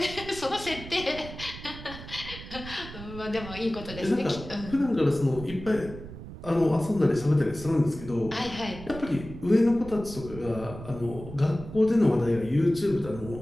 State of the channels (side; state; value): right; noise; rumble, 13 dB below the sound